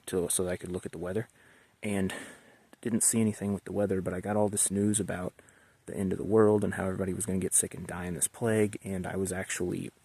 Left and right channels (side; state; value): both; identical; correlation 1.00